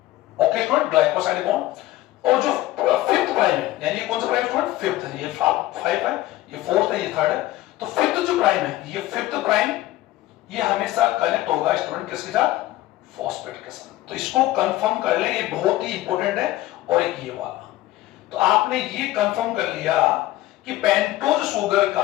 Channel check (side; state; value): right; quieter; 16.0 dB